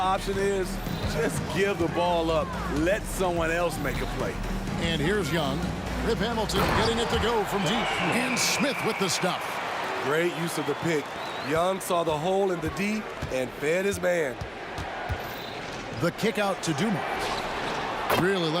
is? Just give the ball up. Let someone else make a play. And here's Young. Rip Hamilton getting it to go from deep. And Smith with the stuff. Great use of the pick. Young saw the hole in the D and fed his man. The kick out to Dumars. Really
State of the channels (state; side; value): identical; both; correlation 1.00